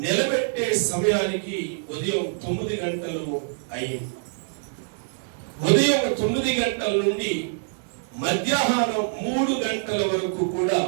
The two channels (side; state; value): left; silent; digital silence